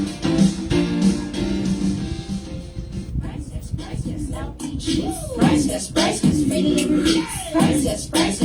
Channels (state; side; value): identical; both; correlation 1.00